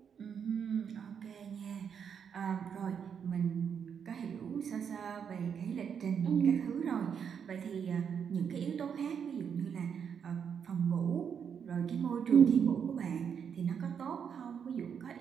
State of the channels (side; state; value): left; quieter; 7.4 dB